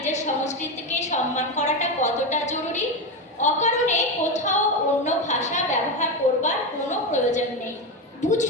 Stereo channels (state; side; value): normal; both; correlation 0.14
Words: সংস্কৃতিকে সম্মান করাটা কতটা জরুরি। অকারণে কোথাও অন্য ভাষা ব্যবহার করবার কোনো প্রয়োজন নেই।